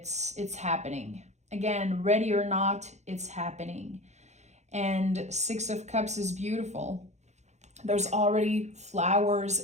happening. Again, ready or not, it's happening. And Six of Cups is beautiful. There's already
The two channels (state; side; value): late; left; 0.33 ms